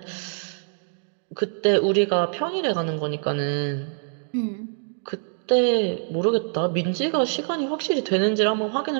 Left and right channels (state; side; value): silent; left; digital silence